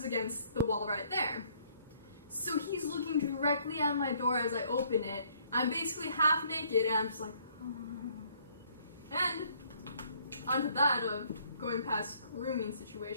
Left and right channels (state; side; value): inverted; both; correlation -0.63